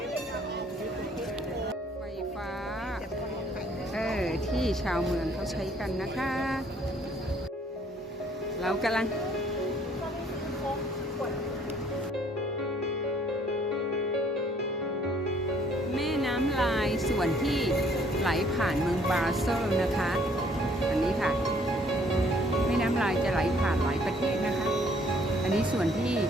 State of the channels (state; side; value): normal; both; correlation 0.61